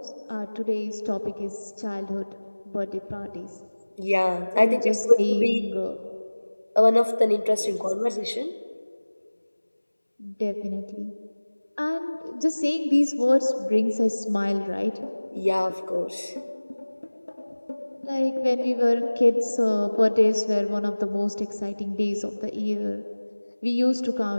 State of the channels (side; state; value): both; inverted; correlation -1.00